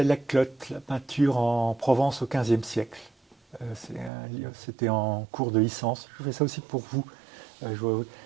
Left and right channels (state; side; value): drops out; left; at 4.1 s